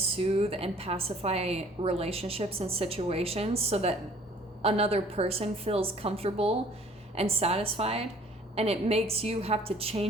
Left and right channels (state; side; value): normal; both; correlation 0.55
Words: and pacify relationships and situations so that another person feels comfortable and satisfied, and it makes you have to